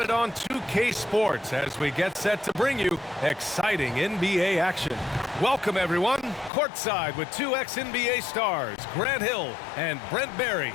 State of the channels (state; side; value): drops out; right; at 6.5 s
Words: it on 2K Sports as we get set to bring you exciting NBA action. Welcome, everyone. Courtside with two ex-NBA stars, Grant Hill and Brent Barry.